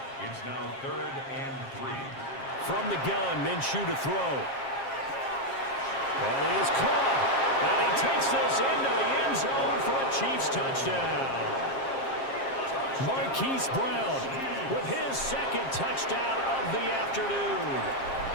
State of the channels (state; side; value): late; right; 7.5 ms